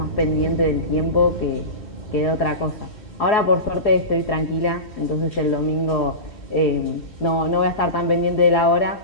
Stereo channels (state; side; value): late; right; 3.1 ms